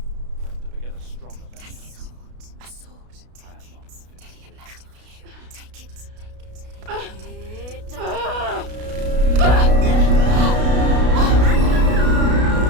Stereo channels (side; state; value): left; late; 32 ms